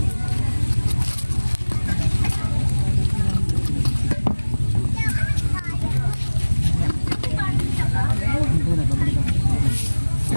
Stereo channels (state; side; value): inverted; both; correlation -1.00